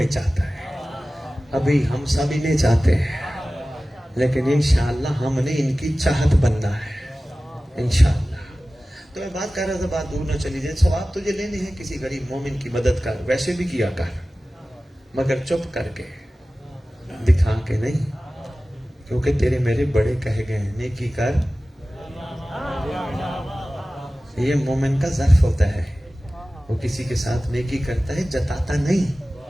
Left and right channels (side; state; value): both; normal; correlation 0.96